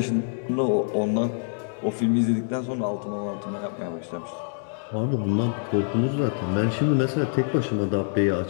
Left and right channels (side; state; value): right; silent; digital silence